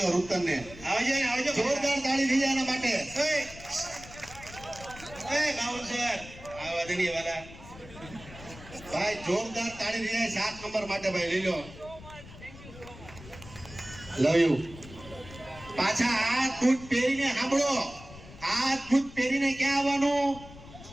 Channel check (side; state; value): left; noise; rumble, 17 dB below the sound